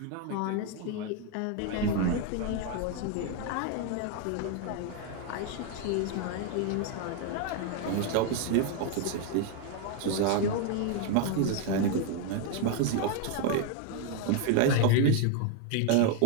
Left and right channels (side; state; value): both; different; correlation 0.01